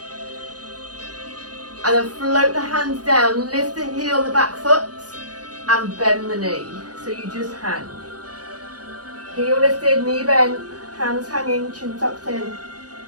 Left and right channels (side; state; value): left; late; 0.68 ms